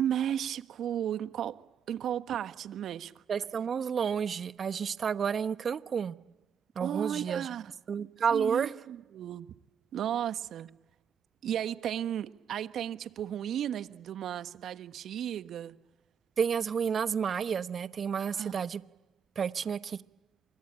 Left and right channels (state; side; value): quieter; left; 7.6 dB